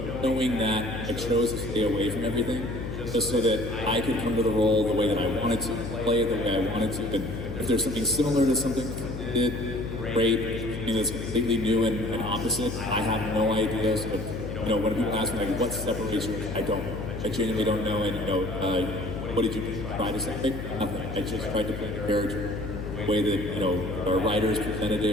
knowing that, I chose to stay away from everything just so that I could come to the role the way that I wanted to, play it the way I wanted to. And if there's something similar to something I did, great. Something that's completely new and opposite, I have no idea. So, you know, when people ask me, like, what separates you? I don't know. I genuinely don't know. And, you know, what did you try to say? Nothing. I just tried to play the character the way that, you know, our writers presented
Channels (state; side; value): noise; left; hum, 7 dB below the sound